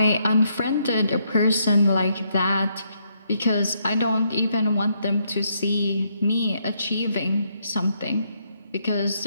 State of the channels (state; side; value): inverted; both; correlation -0.75